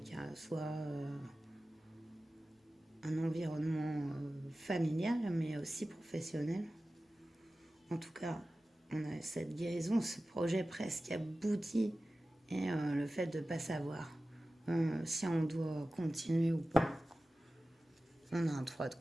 soit un environnement familial, mais aussi professionnel. En tout cas, on a cette guérison, ce projet presque abouti, et le fait de ne pas savoir si on doit continuer ou pas. On a un 3 de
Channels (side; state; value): both; normal; correlation 0.95